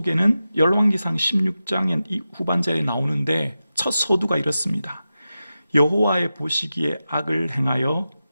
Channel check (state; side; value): inverted; both; correlation -0.92